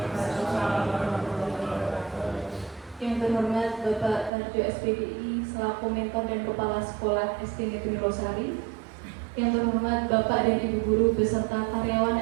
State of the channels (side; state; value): left; drops out; at 4.3 s